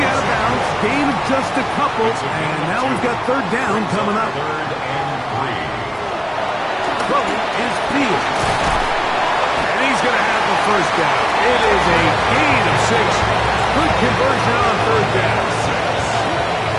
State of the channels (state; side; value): identical; both; correlation 1.00